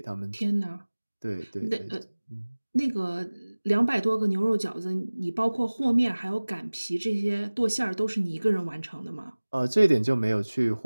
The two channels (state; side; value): inverted; both; correlation -1.00